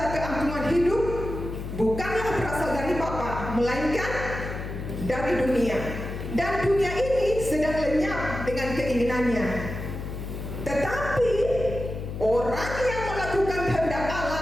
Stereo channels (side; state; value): left; noise; hum, 7 dB below the sound